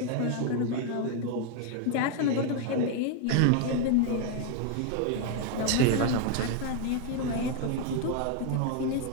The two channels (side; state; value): both; different; correlation 0.00